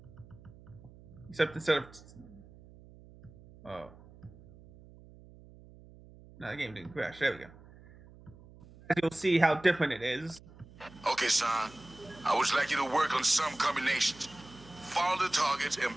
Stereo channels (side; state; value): right; noise; hum, 21 dB below the sound